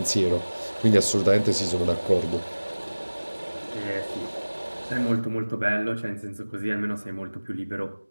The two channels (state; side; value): inverted; both; correlation -1.00